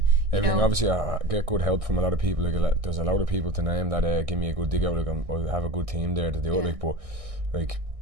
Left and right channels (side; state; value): left; late; 1.6 ms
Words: everything, obviously I get good help from a lot of people, like, there's a lot of people to name that give me a good dig out, like, I have a good team there to do it, like, but, like,